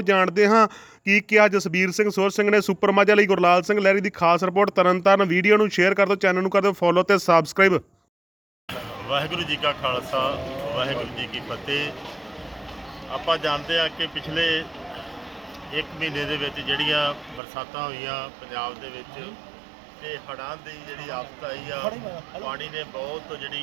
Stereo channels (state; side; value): drops out; left; at 17.4 s